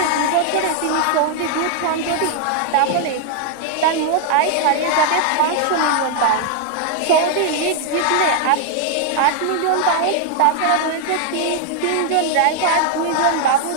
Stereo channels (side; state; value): both; different; correlation 0.00